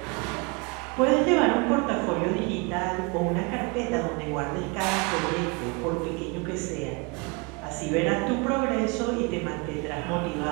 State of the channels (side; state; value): left; quieter; 29.2 dB